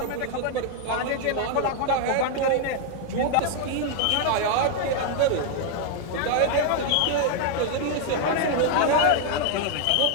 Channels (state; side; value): different; both; correlation 0.00